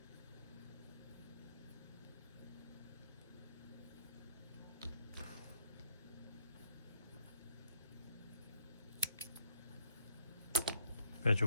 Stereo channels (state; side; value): inverted; both; correlation -0.69